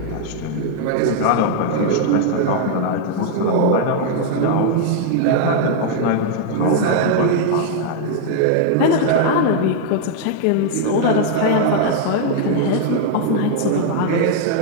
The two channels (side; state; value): both; different; correlation 0.00